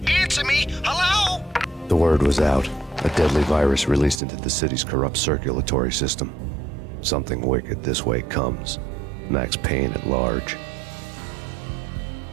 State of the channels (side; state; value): left; drops out; at 4.2 s